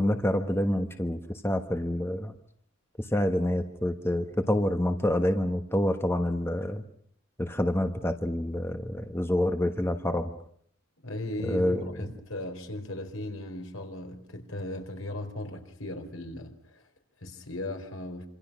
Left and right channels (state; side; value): normal; both; correlation 0.87